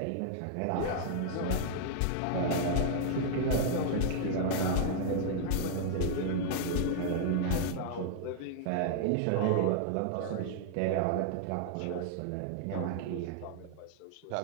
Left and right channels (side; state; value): both; different; correlation -0.01